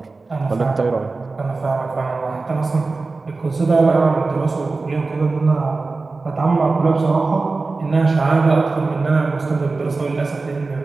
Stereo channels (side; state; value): left; quieter; 3.8 dB